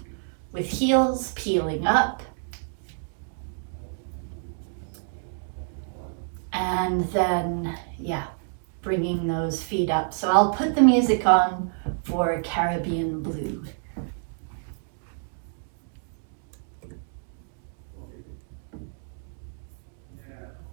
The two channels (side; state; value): left; silent; digital silence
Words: with heels, peeling up. And then, bringing those feet up. So I'll put the music on for Caribbean Blue.